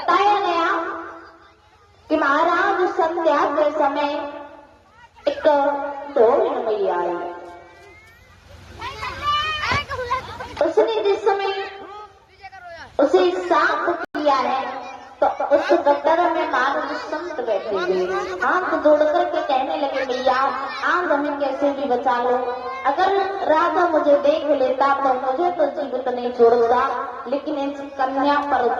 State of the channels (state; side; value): identical; both; correlation 1.00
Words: गया कि महाराज संध्या के समय एक ढोल मैया आई। उसने जिस समय उसे साफ किया है तो उस गटर में महाराज संत बैठे हुए हाथ जोड़ करके कहने लगे, भैया आज हमें कैसे भी बचा लो। अगर राजा मुझे देख लेता तो मुझे तो जीवित नहीं छोड़ता, लेकिन इस कन्या पर